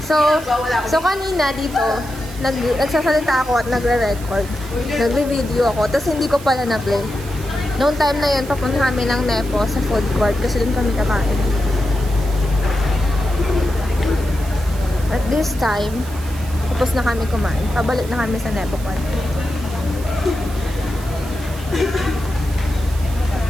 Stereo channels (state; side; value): noise; right; hiss, 17 dB below the sound